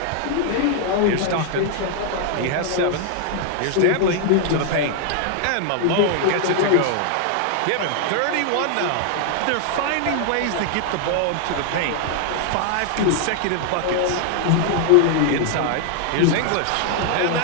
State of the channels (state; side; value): different; both; correlation 0.00